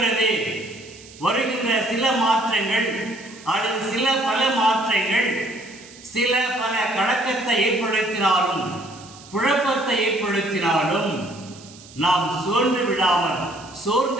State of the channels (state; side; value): noise; right; hiss, 20 dB below the sound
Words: வருகின்ற சில மாற்றங்கள் அல்லது சில பல மாற்றங்கள் சில பல கலக்கத்தை ஏற்படுத்தினாலும் குழப்பத்தை ஏற்படுத்தினாலும் நாம் சோர்ந்து